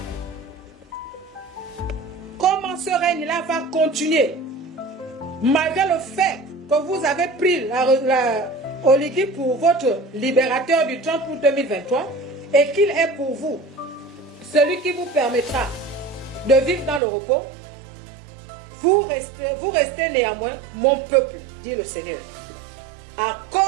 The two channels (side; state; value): left; drops out; at 17.0 s